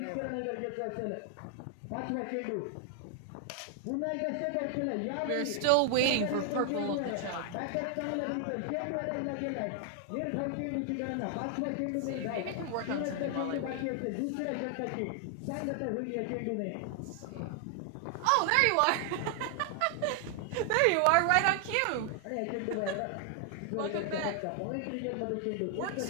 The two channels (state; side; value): different; both; correlation 0.00